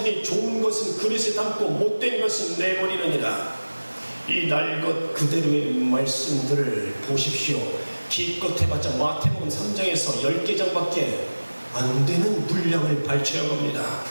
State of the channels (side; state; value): both; inverted; correlation -1.00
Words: 좋은 것은 그릇에 담고 못된 것은 내버리느니라. 이 날 것 그대로의 말씀들을 보십시오. 기껏 해봤자 마태복음 3장에서 10개장밖에 안 되는 분량을 발췌한 겁니다.